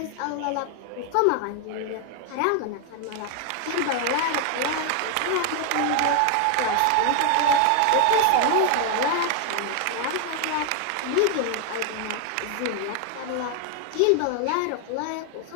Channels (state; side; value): different; both; correlation 0.01